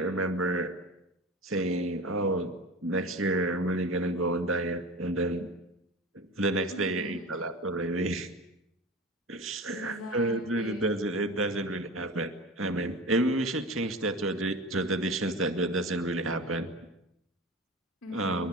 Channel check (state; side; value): normal; both; correlation 0.32